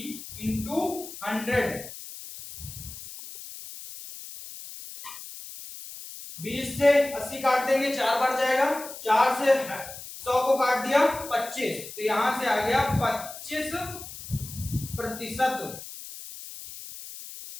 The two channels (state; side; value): noise; left; hiss, 13 dB below the sound